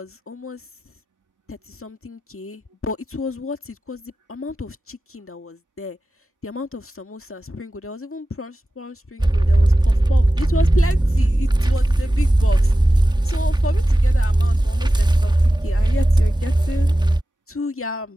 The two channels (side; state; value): both; normal; correlation 0.95